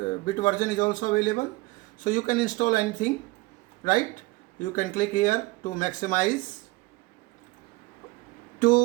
version is also available. So you can install anything, right? You can click here to maximize.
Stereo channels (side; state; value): left; quieter; 22.3 dB